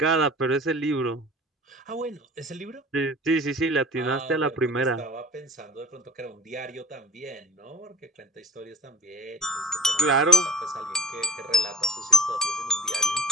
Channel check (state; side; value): normal; both; correlation 0.48